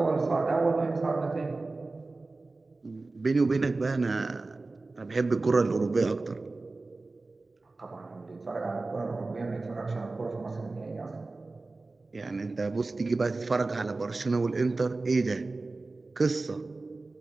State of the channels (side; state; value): left; quieter; 3.4 dB